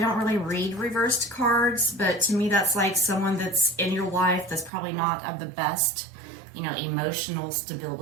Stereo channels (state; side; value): drops out; left; at 4.7 s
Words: really read reversed cards, but to me that's like someone that's in your life that's probably not of the best, you know, emotional